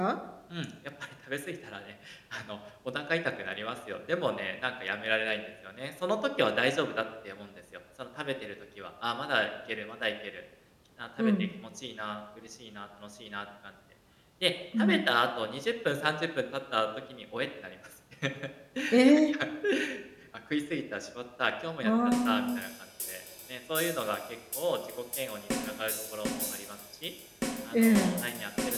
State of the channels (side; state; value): both; identical; correlation 1.00